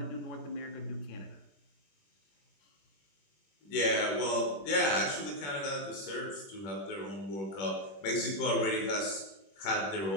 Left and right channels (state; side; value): late; right; 21 ms